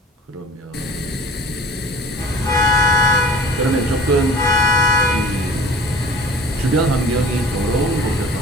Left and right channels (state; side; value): normal; both; correlation 0.45